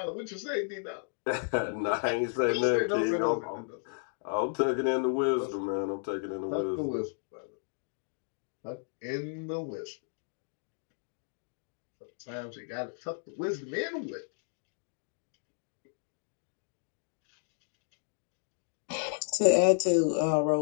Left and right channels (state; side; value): silent; right; digital silence